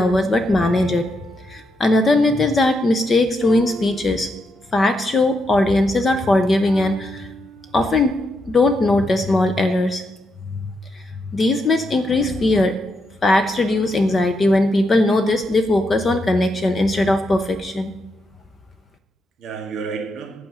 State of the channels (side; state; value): both; normal; correlation 0.82